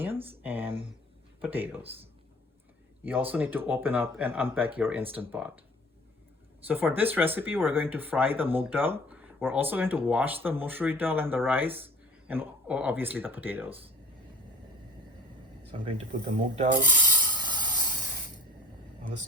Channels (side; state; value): both; normal; correlation 0.44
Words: and potatoes. You also need to open up and unpack your Instant Pot. So for this recipe, we're going to fry the moong dal. We're also going to wash the musuri dal and the rice, and obviously the potatoes. So I'm going to put the moong dal on the